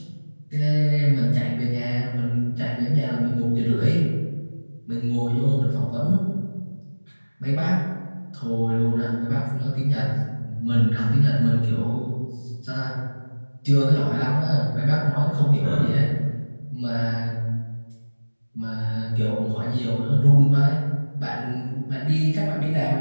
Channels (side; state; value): both; inverted; correlation -1.00